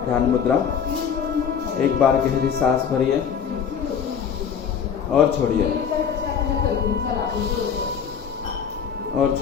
ध्यान मुद्रा। एक बार गहरी सांस भरिए और छोड़िए और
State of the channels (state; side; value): quieter; right; 7.4 dB